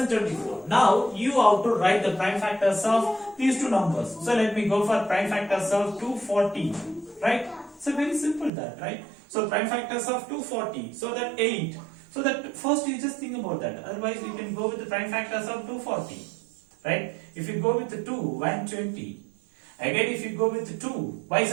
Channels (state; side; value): drops out; left; at 8.5 s